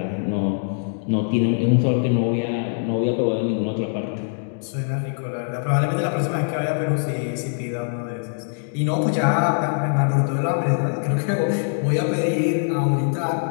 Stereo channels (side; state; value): right; silent; digital silence